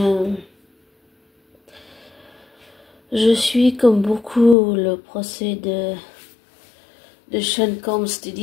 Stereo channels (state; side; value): drops out; right; at 4.5 s